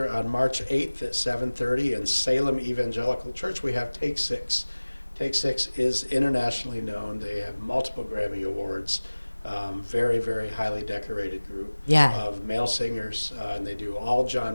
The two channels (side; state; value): both; inverted; correlation -1.00